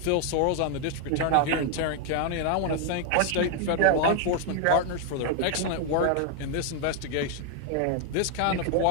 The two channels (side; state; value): both; different; correlation 0.00